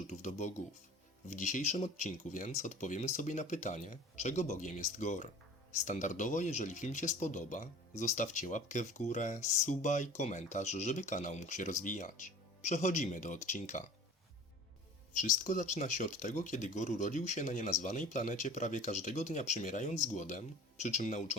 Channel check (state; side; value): normal; both; correlation 0.43